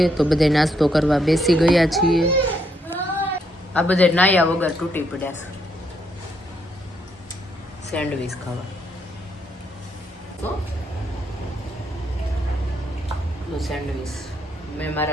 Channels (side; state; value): both; normal; correlation 0.75